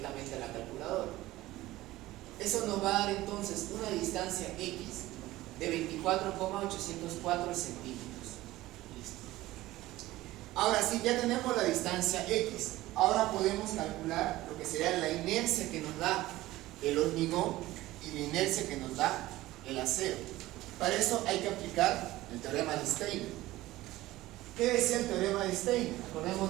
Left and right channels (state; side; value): quieter; left; 17.1 dB